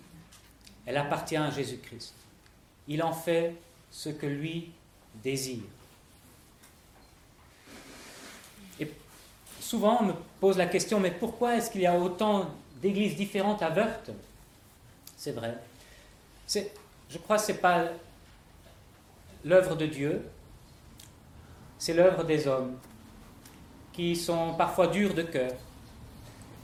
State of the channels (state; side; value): identical; both; correlation 1.00